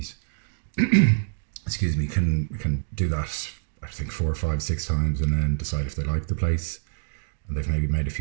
excuse me, can do that, I think 4, 5, 6 times, and then decide if they like the place, and they've maybe made a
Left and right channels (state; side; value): silent; left; digital silence